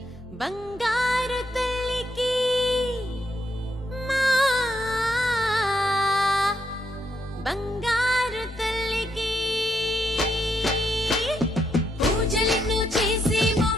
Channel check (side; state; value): both; normal; correlation 0.77